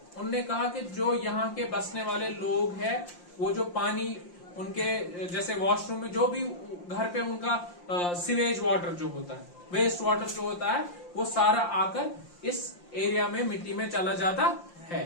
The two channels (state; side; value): late; right; 5.7 ms